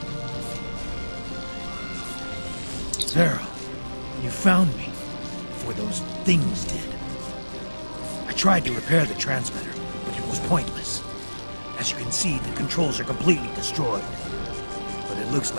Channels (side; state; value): both; inverted; correlation -1.00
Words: Farrell, you found me before those things did. I tried to repair the transmitter, but it was pointless. As you can see, the controls are completely destroyed. But it looks